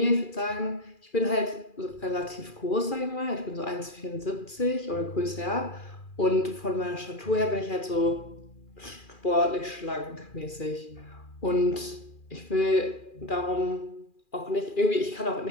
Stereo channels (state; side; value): late; right; 2.4 ms